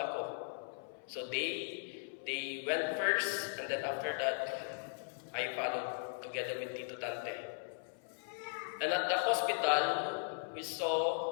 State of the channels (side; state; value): right; silent; 52 dB below the other